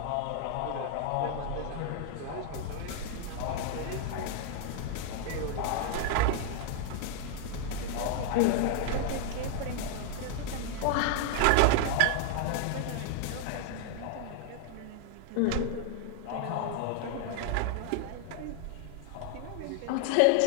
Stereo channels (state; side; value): different; both; correlation 0.00